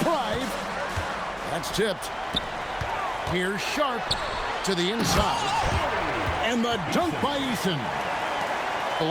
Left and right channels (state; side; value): identical; both; correlation 1.00